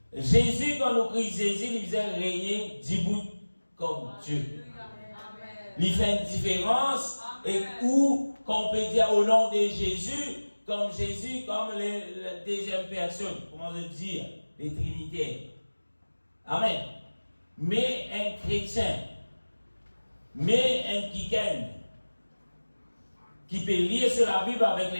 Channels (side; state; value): both; inverted; correlation -1.00